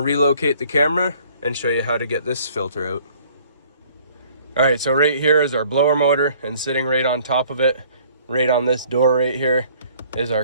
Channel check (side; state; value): both; inverted; correlation -0.57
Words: relocate the camera and show you how to get this filter out. Alright, so right here is our blower motor, and sitting right on top of it, right on this door right here, is our